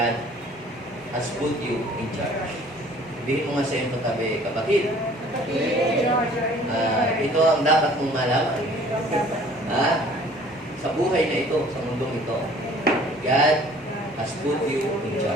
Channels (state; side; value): normal; both; correlation 0.53